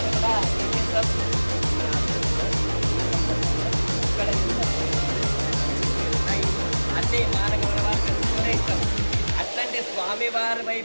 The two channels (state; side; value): inverted; both; correlation -1.00